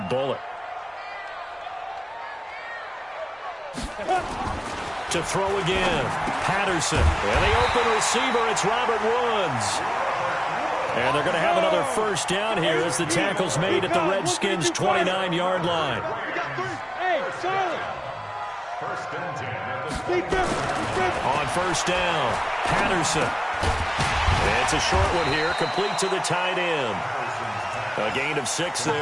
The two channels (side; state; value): both; identical; correlation 1.00